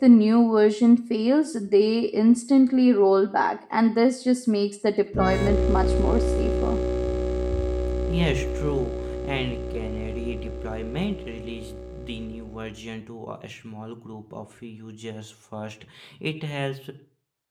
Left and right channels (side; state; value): both; identical; correlation 1.00